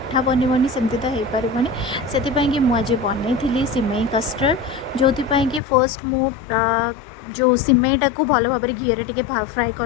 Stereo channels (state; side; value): drops out; right; at 5.6 s